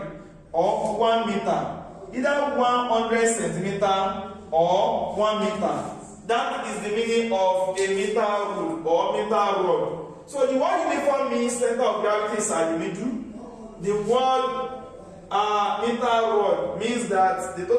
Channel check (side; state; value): both; identical; correlation 1.00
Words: or 1 meter. Either 100 centimeter or 1 meter. That is the meaning of a meter rule or meter rod. So the word uniform means center of gravity is at the middle. The word meter rod means that the